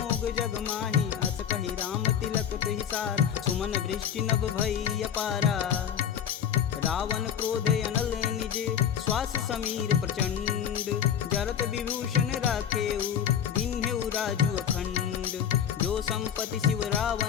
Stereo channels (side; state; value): right; quieter; 8.8 dB